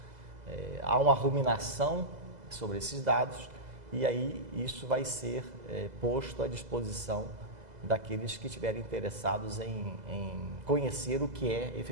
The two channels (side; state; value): left; late; 2.0 ms